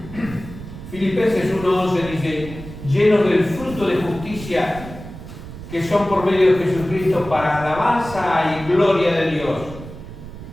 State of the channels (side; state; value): right; noise; rumble, 13 dB below the sound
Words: Filipenses 1:11 dice: llenos del fruto de justicia que son por medio de Jesucristo para alabanza y gloria de Dios.